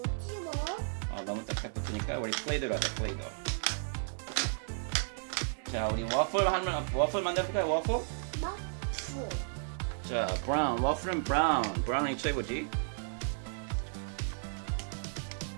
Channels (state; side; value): silent; left; digital silence